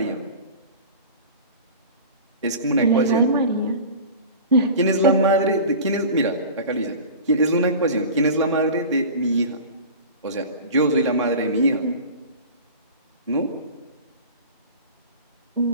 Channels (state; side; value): inverted; both; correlation -0.36